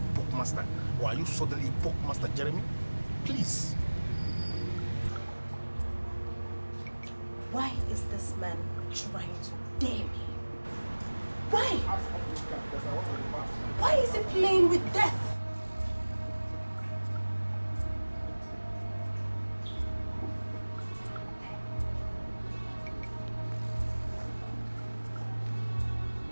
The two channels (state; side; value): inverted; both; correlation -1.00